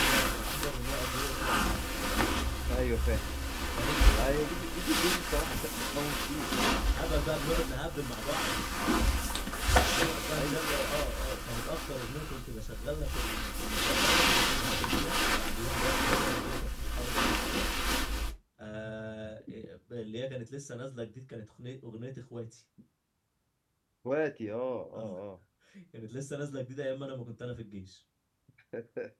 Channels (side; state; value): both; identical; correlation 1.00